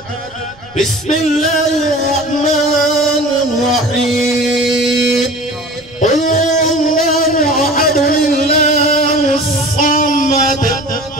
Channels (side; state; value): right; noise; rumble, 26 dB below the sound